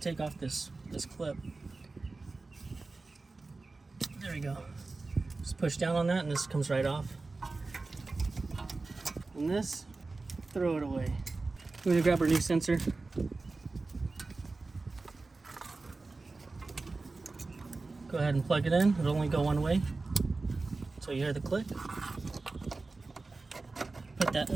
off this clip. There we go. Just push down on that and this comes right off. And this, throw it away. We're gonna grab our new sensor. Go ahead and plug it in. It'll only go one way. So you hear the click. Put that in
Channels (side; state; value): left; quieter; 3.6 dB